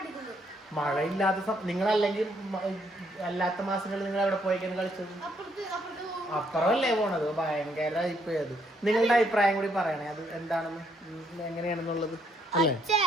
മഴയില്ലാത്ത നിങ്ങളല്ലെങ്കിൽ അല്ലാത്ത മാസങ്ങളിൽ നിങ്ങൾ എവിടെ പോയിക്കാണ് കളിച്ചത്? അപ്പുറമല്ലേ പോണത്? ഭയങ്കര ഇപ്പൊ അത്. നിങ്ങളുടെ അഭിപ്രായം കൂടി പറയണേ, അത് എന്താണെന്ന്, എങ്ങനെയാണെന്നുള്ളത് അല്ലേ?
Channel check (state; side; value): normal; both; correlation 0.71